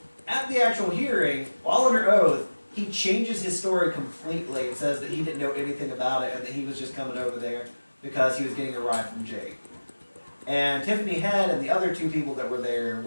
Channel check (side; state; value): both; inverted; correlation -1.00